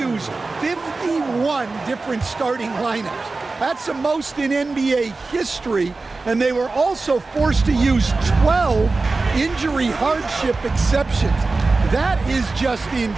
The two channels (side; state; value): left; quieter; 3.7 dB